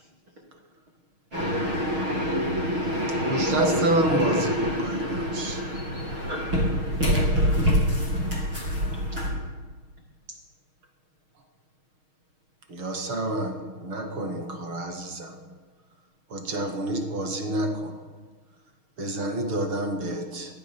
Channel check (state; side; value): late; left; 6.4 ms